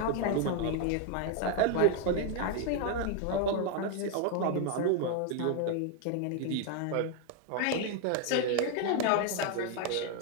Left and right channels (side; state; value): both; different; correlation 0.01